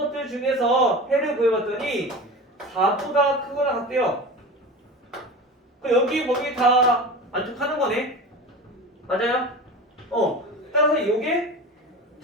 중에서 해를 구해봤더니 4보다 크거나 같대요. 여기 거기 다 만족하는 거네. 맞아요? 따라서 요게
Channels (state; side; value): normal; both; correlation 0.32